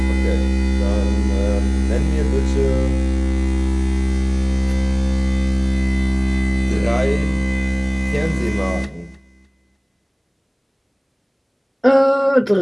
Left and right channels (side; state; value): both; identical; correlation 1.00